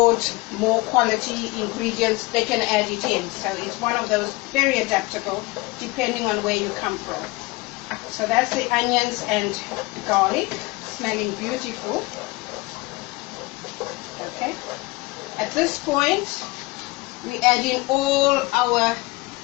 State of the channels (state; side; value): quieter; right; 23.3 dB